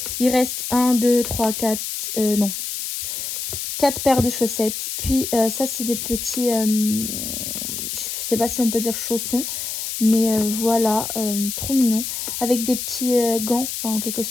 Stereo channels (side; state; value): left; noise; hiss, 5 dB below the sound